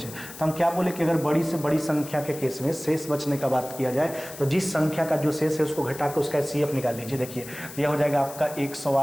तो हम क्या बोले कि अगर बड़ी से बड़ी संख्या के केस में शेष बचने का बात किया जाए तो जिस संख्या का जो शेष है उसको घटा कर उसका CF निकाल लीजिए। देखिए यह हो जाएगा आपका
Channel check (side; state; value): left; noise; hiss, 15 dB below the sound